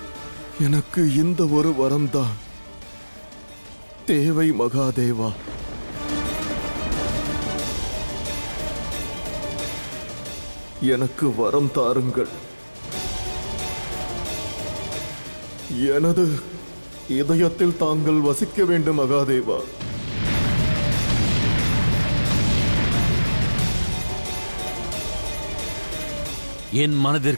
எனக்கு இந்த ஒரு வரம்தான் தேவை மகாதேவா. எனக்கு வரம் தாருங்கள். எனது இதயத்தில் தாங்கள் வசிக்க வேண்டும் மகாதேவா. என்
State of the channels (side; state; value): both; inverted; correlation -1.00